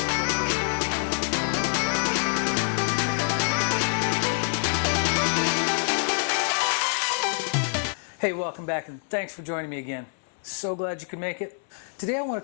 Hey, welcome back and thanks for joining me again. So glad you could make it. Today I want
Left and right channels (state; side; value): silent; right; 61 dB below the other